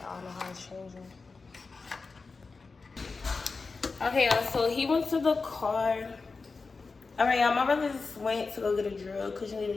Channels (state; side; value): quieter; right; 4.2 dB